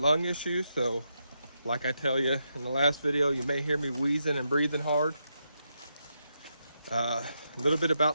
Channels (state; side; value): inverted; both; correlation -0.83